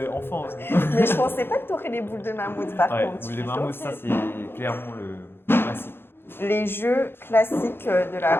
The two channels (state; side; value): late; right; 0.11 ms